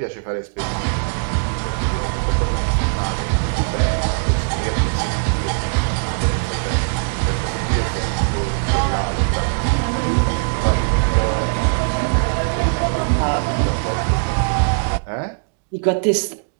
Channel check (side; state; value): left; silent; digital silence